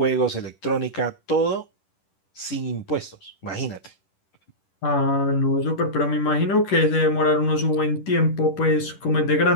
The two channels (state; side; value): late; right; 10 ms